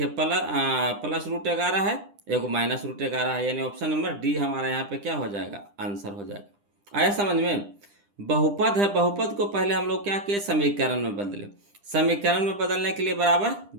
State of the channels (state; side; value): late; left; 10 ms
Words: प्लस रूट 11 है, एगो माइनस रूट 11 है, यानी ऑप्शन नंबर डी हमारा यहाँ पे क्या हो जाएगा, आंसर हो जाएगा। आया समझ में। बहुपद है, बहुपद को पहले हम लोग क्या किए, समीकरण में बदले। समीकरण में बदलने के लिए बराबर